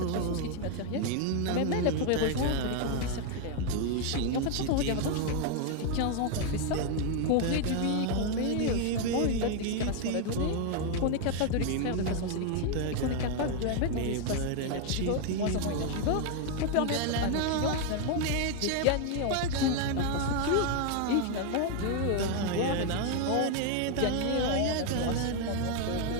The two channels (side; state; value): both; different; correlation 0.01